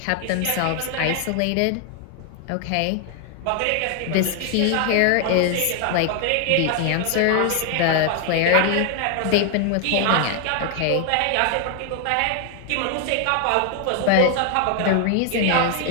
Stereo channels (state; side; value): different; both; correlation 0.00